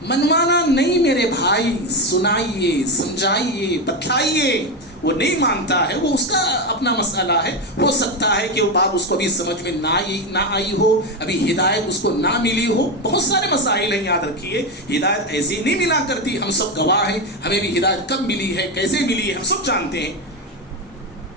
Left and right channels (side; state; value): both; normal; correlation 0.12